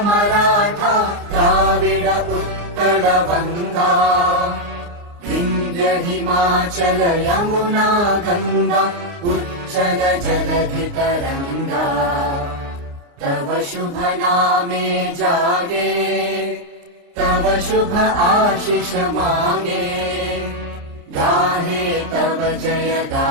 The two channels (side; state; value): left; late; 29 ms